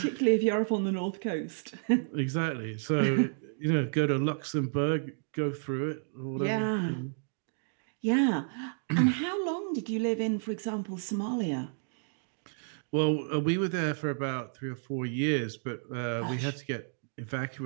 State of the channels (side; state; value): left; silent; digital silence